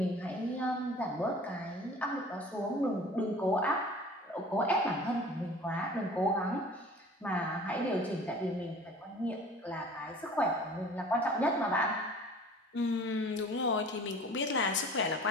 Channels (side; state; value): both; normal; correlation 0.45